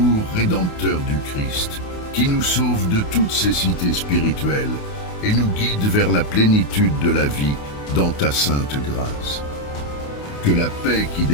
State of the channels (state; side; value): late; right; 28 ms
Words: rédempteur du Christ, qui nous sauve de toute cécité spirituelle et nous guide vers la plénitude de la vie dans ta sainte grâce. Que la paix qui